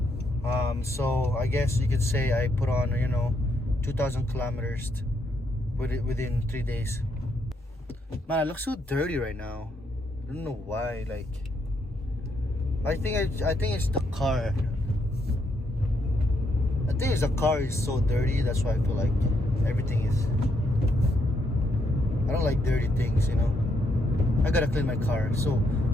So I guess you could say I put on 2,000 kilometers within 3 days. Man, I look so dirty right now. I don't know why. Like, I think it's the car. I think it's the car is so dirty. That's why I feel like everything is. I don't like dirty things, I gotta clean my car. So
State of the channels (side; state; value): both; normal; correlation 0.76